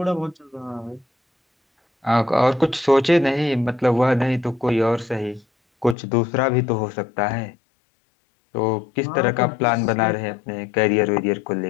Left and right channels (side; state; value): right; drops out; at 6.0 s